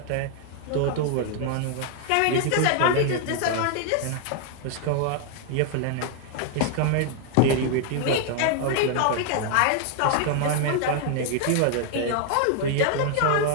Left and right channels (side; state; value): both; different; correlation 0.00